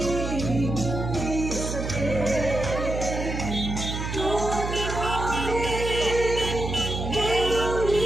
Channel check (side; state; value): right; noise; hum, 4 dB below the sound